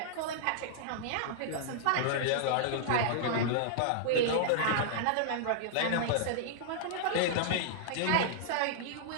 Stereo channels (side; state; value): both; different; correlation -0.01